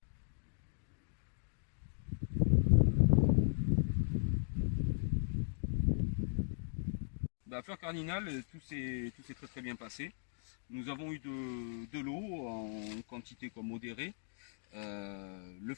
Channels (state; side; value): silent; right; digital silence